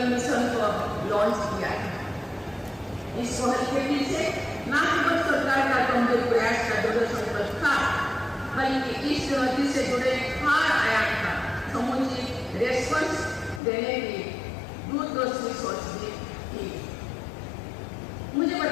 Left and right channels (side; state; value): right; drops out; at 13.6 s